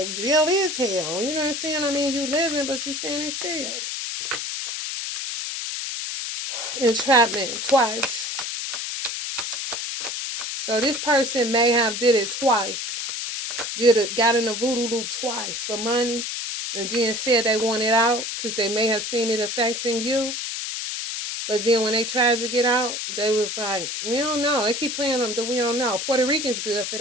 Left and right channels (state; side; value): noise; left; hiss, 4 dB below the sound